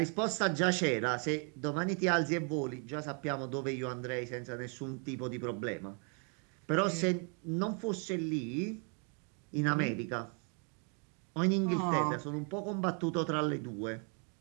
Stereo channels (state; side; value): quieter; left; 38.7 dB